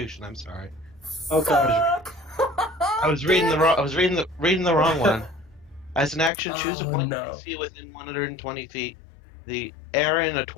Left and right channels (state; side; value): drops out; right; at 6.3 s